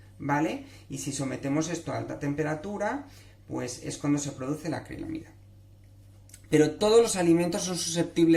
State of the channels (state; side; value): identical; both; correlation 1.00